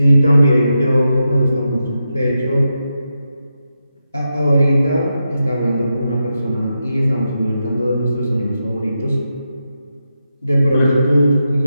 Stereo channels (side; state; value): both; inverted; correlation -0.87